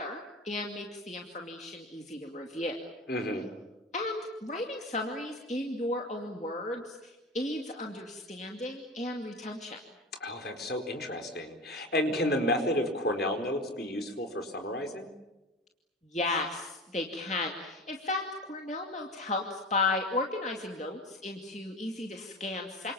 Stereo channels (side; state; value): both; normal; correlation 0.31